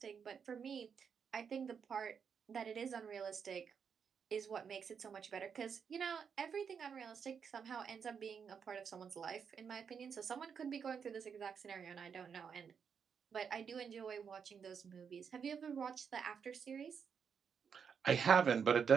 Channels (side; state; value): left; quieter; 6.8 dB